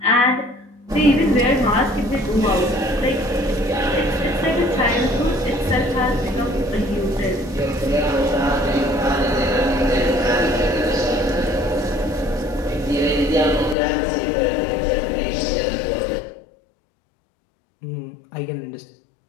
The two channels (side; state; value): right; drops out; at 13.8 s